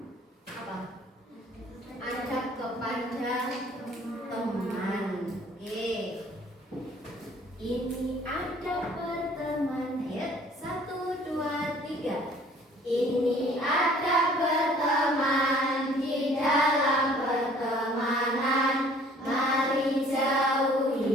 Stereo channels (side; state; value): both; normal; correlation 0.55